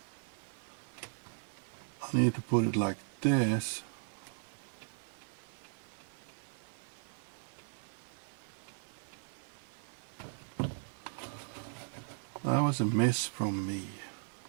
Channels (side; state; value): left; silent; digital silence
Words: I need to put it like this. That was a miss from me.